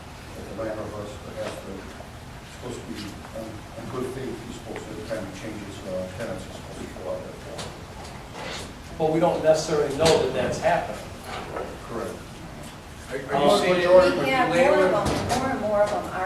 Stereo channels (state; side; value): identical; both; correlation 1.00